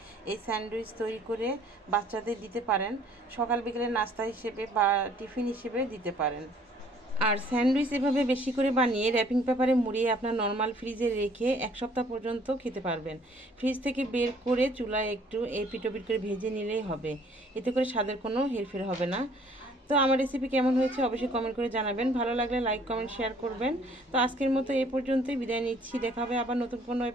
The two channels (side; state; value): both; normal; correlation 0.58